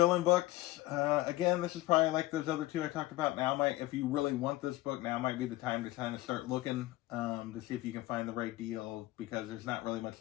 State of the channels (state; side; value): quieter; right; 17.7 dB